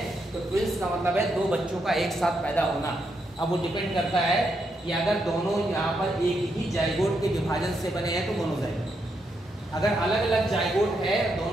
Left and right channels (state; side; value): normal; both; correlation 0.80